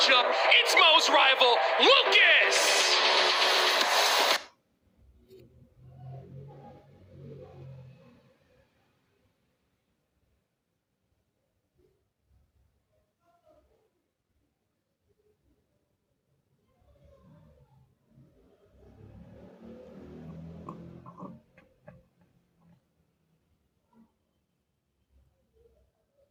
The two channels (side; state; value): both; identical; correlation 1.00